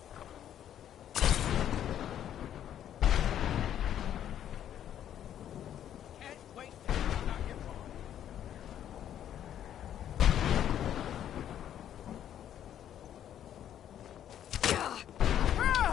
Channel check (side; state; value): right; quieter; 10.4 dB